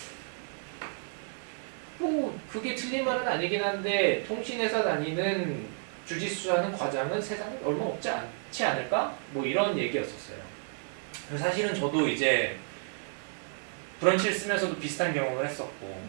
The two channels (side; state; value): left; silent; 57 dB below the other